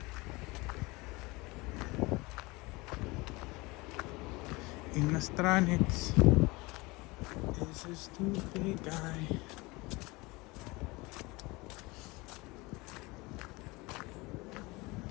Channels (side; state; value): right; quieter; 23.6 dB